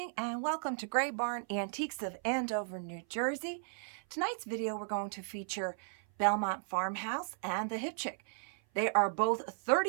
and welcome to Gray Barn Antiques of Andover, New Jersey. Tonight's video we're going to feature Belmont Farmhouse and the Hip Chick. They are both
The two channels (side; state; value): left; silent; 54 dB below the other